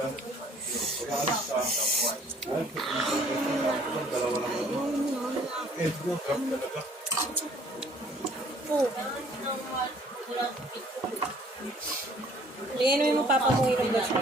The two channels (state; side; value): normal; both; correlation 0.57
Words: Painumin mo papa mo yung gusto.